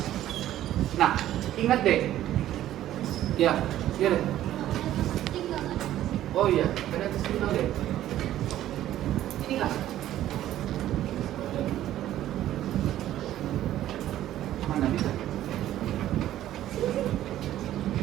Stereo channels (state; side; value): quieter; left; 12.9 dB